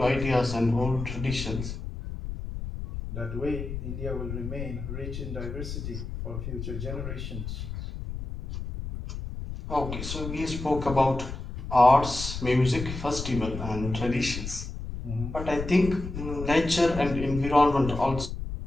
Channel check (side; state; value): left; noise; rumble, 7 dB below the sound